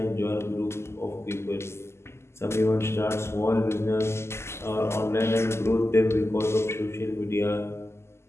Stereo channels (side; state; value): right; late; 0.13 ms